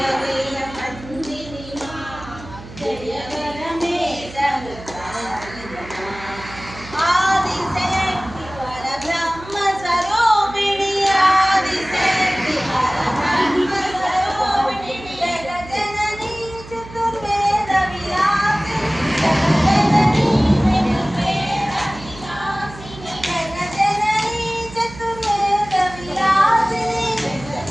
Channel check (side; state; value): right; noise; hum, 16 dB below the sound